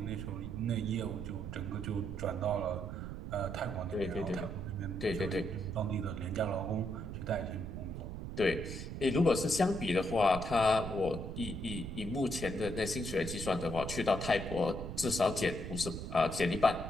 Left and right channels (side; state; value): right; noise; rumble, 7 dB below the sound